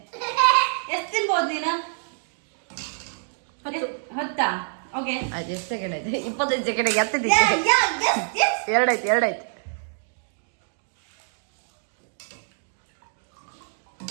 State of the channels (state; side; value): silent; left; digital silence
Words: ಎಷ್ಟು ತಿನ್ಬೋದು ನೀನು? 10. ಓಕೆ, ಆಯ್ತು. ಎಷ್ಟು ಸೆಕೆಂಡ್ ಆಯ್ತು? 25 ಸೆಕೆಂಡ್. 2 ಆಯ್ತು.